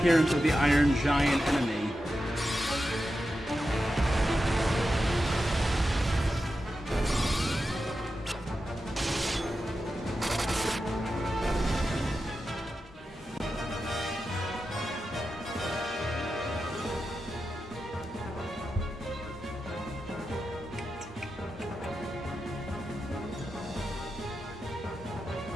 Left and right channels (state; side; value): normal; both; correlation 0.90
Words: of the Iron Giant enemy.